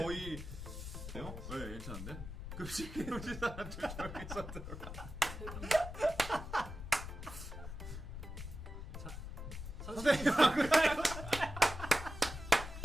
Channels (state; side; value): noise; left; rumble, 9 dB below the sound